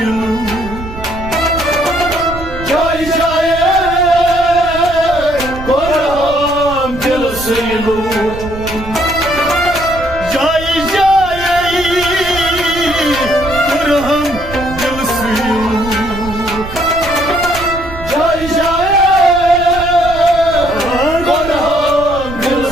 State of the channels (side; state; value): right; noise; rumble, 12 dB below the sound